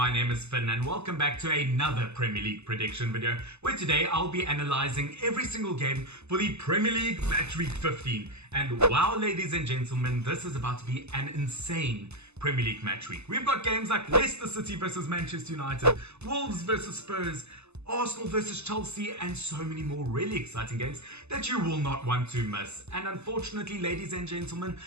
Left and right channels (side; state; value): left; late; 0.80 ms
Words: name is Finn and welcome back to another Premier League prediction video where today I'll be analysing every single game for the Premier League Matchweek 15. And wow, ladies and gentlemen, this is about to be an insane Premier League Matchweek. We've got games like Leicester City versus Manchester United, Wolves versus Spurs, Arsenal versus Chelsea, and so many more really exciting games that you will not want to miss. And unfortunately, ladies and gentlemen,